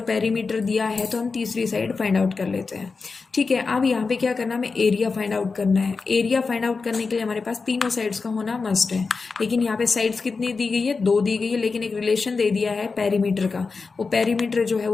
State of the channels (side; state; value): right; quieter; 4.5 dB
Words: पेरीमीटर दिया है तो हम तीसरी साइड फाइंड आउट कर लेते हैं। ठीक है, अब यहाँ पे क्या करना, हमें एरिया फाइंड आउट करना है। एरिया फाइंड आउट करने के लिए हमारे पास तीनों साइड्स का होना मस्ट है, लेकिन यहाँ पे साइड्स कितनी दी गई है, 2 दी गई है, लेकिन एक रिलेशन दे दिया है पेरीमीटर का। वो पेरीमीटर जो है